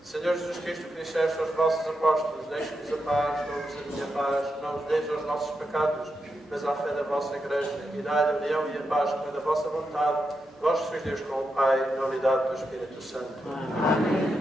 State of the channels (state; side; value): normal; both; correlation 0.85